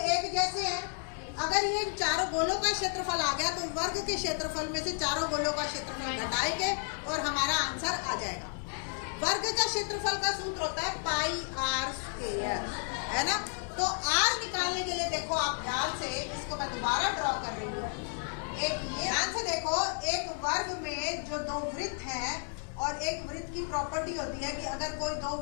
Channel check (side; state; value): right; silent; 56 dB below the other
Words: जैसे हैं, अगर ये चारों गोलों का क्षेत्रफल आ गया तो वर्ग के क्षेत्रफल में से चारों गोलों का क्षेत्रफल घटाएंगे और हमारा आंसर आ जाएगा। वर्ग का क्षेत्रफल का सूत्र होता है पाई आर स्क्वायर, है ना। तो आर निकालने के लिए देखो आप ध्यान से, इसको मैं दोबारा ड्रॉ कर रही हूँ। एक ये ध्यान से देखो, एक वर्ग में जो दो वृत्त हैं और एक वृत्त की प्रॉपर्टी होती है कि अगर कोई दो